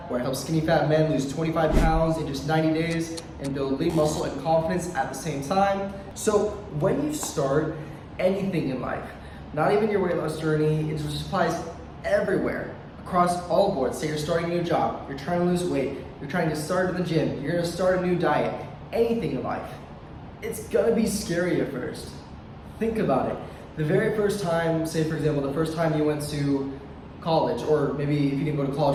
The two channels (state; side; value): identical; both; correlation 1.00